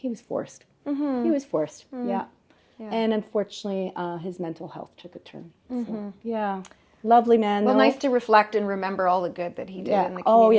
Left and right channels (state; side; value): identical; both; correlation 1.00